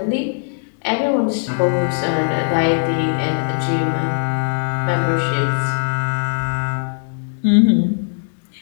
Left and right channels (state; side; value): silent; right; digital silence